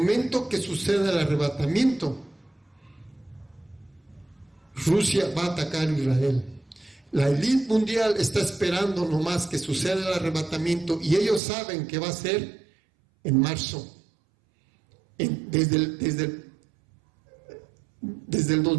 que suceda el arrebatamiento, Rusia va a atacar a Israel. La élite mundial está esperando nomás que suceda el arrebatamiento, y ellos saben que va a ser en marzo. Desde el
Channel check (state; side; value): drops out; left; at 11.4 s